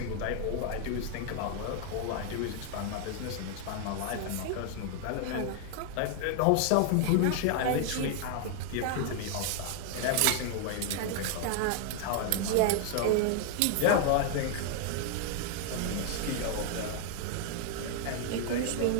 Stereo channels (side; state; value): both; different; correlation 0.00